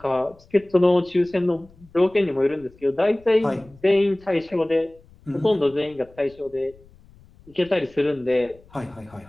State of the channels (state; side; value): noise; left; rumble, 27 dB below the sound